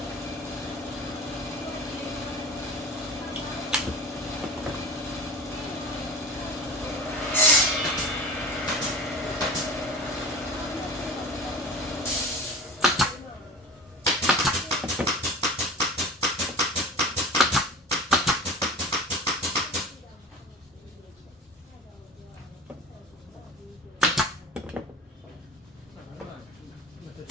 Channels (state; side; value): normal; both; correlation 0.36